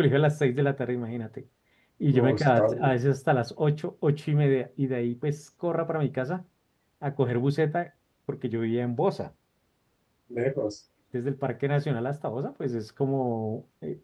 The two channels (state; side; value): identical; both; correlation 1.00